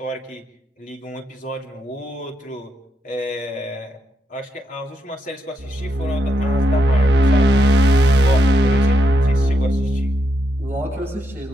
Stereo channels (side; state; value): both; normal; correlation 0.81